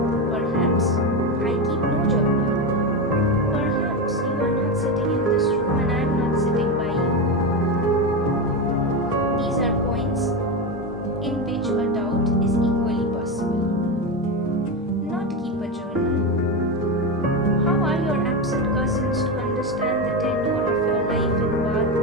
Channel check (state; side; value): normal; both; correlation 0.15